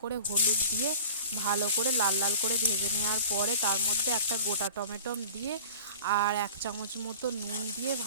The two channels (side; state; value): both; inverted; correlation -0.39